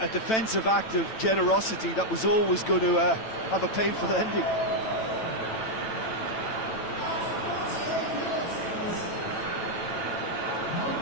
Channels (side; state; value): right; late; 9.0 ms